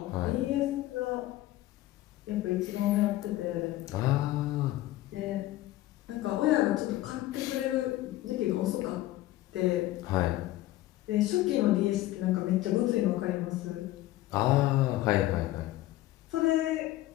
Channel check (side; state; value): right; quieter; 15.9 dB